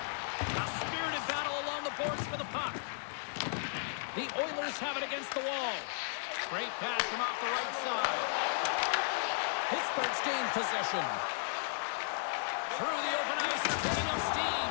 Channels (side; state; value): right; silent; 55 dB below the other